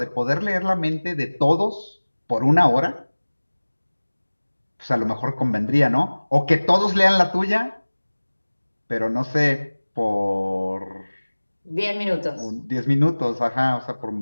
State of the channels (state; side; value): inverted; both; correlation -1.00